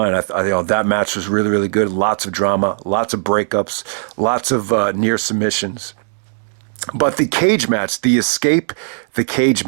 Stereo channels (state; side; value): silent; left; digital silence